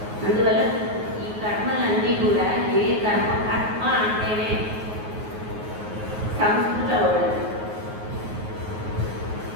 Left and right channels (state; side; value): late; left; 9.4 ms